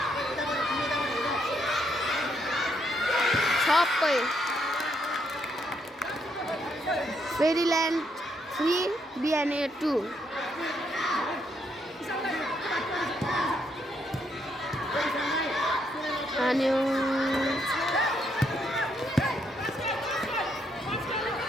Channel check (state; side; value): normal; both; correlation 0.75